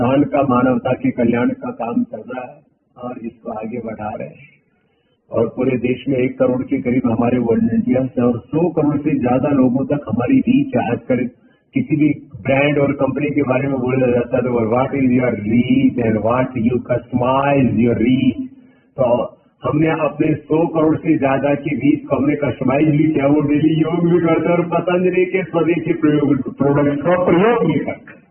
का, मानवता के कल्याण का काम चल रहा है और इसको आगे बढ़ा रहे हैं। और पूरे देश में 1 करोड़ के करीब हमारे वॉलंटियर्स हैं और 100 करोड़ से ज्यादा लोगों तक हमारी रीच है। आजकल किसी भी ब्रांड और कंपनी के बारे में बोला जाता है तो what is your reach and what you customise your reach. तो हमने अपने 100 करोड़ से ज्यादा की रीच को हमने कस्टमाइज भी किया। वो डेली योग भी करते हैं और पतंजलि के स्वदेशी प्रोडक्ट का प्रयोग भी करते हैं।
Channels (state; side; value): identical; both; correlation 1.00